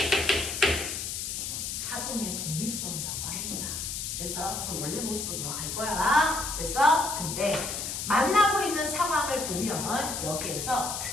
파동의 독립성이라고 합니다. 그래서 원래 모습으로 돌아갈 거야. 그래서 근데 만나고 있는 상황을 보면 여기에서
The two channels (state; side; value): noise; left; hiss, 4 dB below the sound